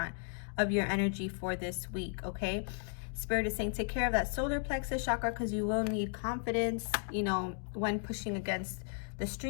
of your energy for this week, okay? Spirit is saying take care of that solar plexus chakra because you will need confidence, you know, when pushing against the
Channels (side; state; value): right; silent; 54 dB below the other